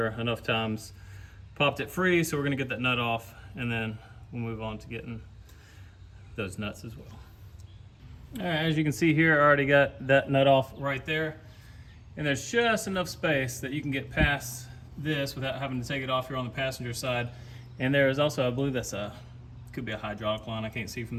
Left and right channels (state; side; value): identical; both; correlation 1.00